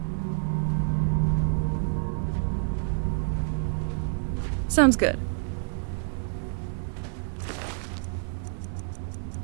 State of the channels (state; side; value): silent; left; digital silence